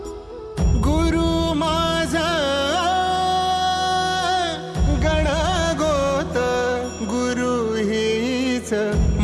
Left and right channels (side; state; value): both; identical; correlation 1.00